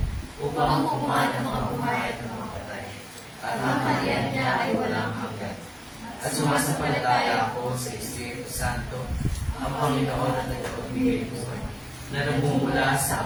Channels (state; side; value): identical; both; correlation 1.00